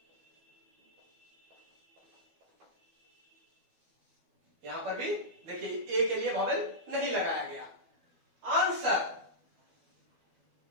यहां पर भी देखिए ए के लिए वॉवेल नहीं लगाया गया। आंसर,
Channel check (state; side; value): late; left; 12 ms